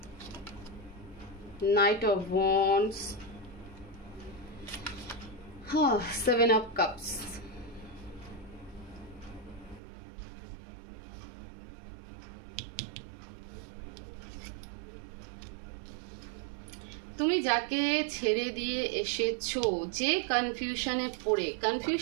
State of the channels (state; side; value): drops out; left; at 9.8 s